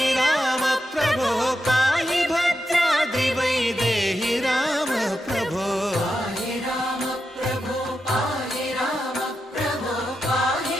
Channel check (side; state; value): both; normal; correlation 0.87